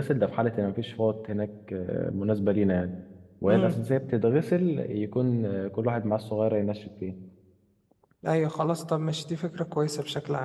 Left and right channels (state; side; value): identical; both; correlation 1.00